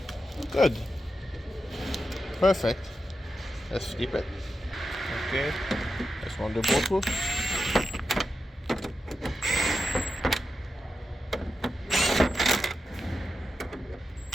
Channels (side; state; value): both; normal; correlation 0.89